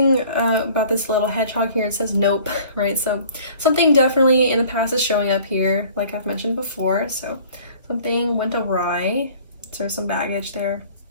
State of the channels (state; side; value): inverted; both; correlation -0.50